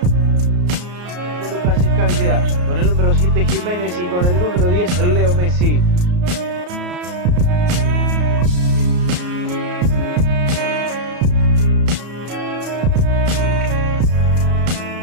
Con el número 7 Jiménez y con el número 10 Leo Messi.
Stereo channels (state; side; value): late; left; 34 ms